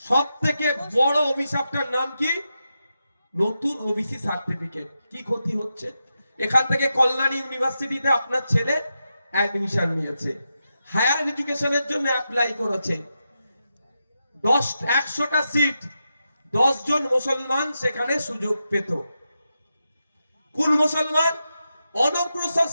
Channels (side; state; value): both; inverted; correlation -0.88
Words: সব থেকে বড় অভিশাপটার নাম কি? নতুন ওবিসি সার্টিফিকেট। কি ক্ষতি হচ্ছে? এখান থেকে কল্যাণী ইউনিভার্সিটিতে আপনার ছেলে অ্যাডমিশন নিয়েছে, হায়ার এডুকেশনের জন্য অ্যাপ্লাই করেছে, 100টা সিট, 10 জন মুসলমান সেখানে সুযোগ পেত। কোন মুসলমান? অনগ্রসর